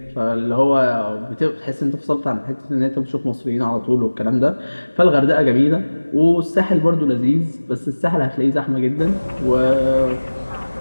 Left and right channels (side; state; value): both; inverted; correlation -1.00